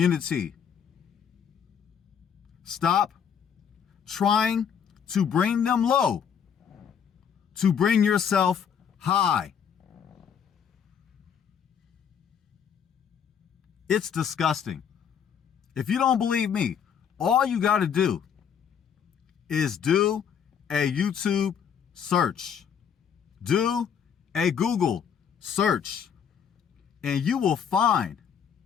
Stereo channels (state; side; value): quieter; right; 7.7 dB